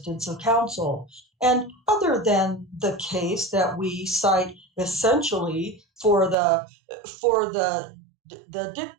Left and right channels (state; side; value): drops out; left; at 6.4 s